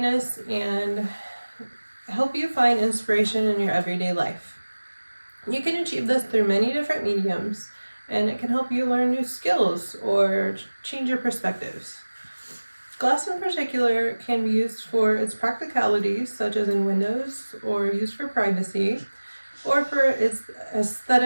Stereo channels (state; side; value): inverted; both; correlation -1.00